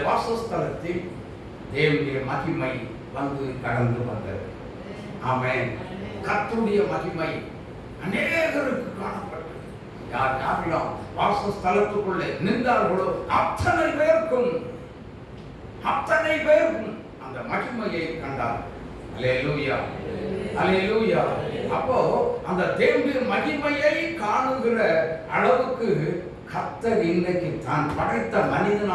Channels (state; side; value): identical; both; correlation 1.00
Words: வாசஸ்தலத்தில் தேவனுடைய மகிமை வந்து கடந்து வந்தது. ஆமென். கர்த்தருடைய மகிமை அநேகருக்கு காணப்பட்டது. யார் யாரெல்லாம் வாசஸ்தலத்துக்குள்ளே நின்றார்களோ அத்தனை பேருக்கும் அந்த மகிமையை கண்டார். அல்லேலூயா, அல்லேலூயா. அப்போ அந்த தேவனுடைய மகிமையை காணுகிற அளவுக்கு கர்த்தர் இன்றைக்கு தான் படைத்த